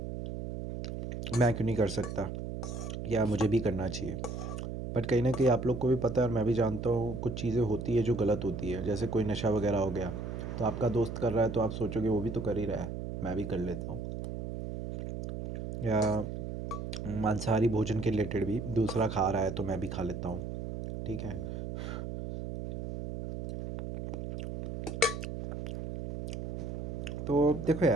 मैं क्यों नहीं कर सकता, या मुझे भी करना चाहिए। बट कहीं ना कहीं आप लोग को भी पता है और मैं भी जानता हूँ, कुछ चीज़ें होती है जो गलत होती है। जैसे कोई नशा वगैरह हो गया, तो आपका दोस्त कर रहा है तो आप सोचोगे वो भी तो कर ही रहा है, मैं भी कर लेता हूँ। या मांसाहारी भोजन के रिलेटेड भी, दूसरा खा रहा है तो मैं भी खा लेता हूँ, ठीक है। तो देखो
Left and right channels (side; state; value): right; noise; hum, 6 dB below the sound